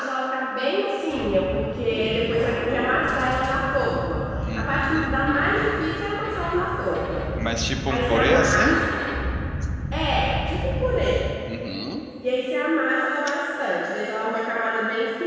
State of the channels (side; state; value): both; identical; correlation 1.00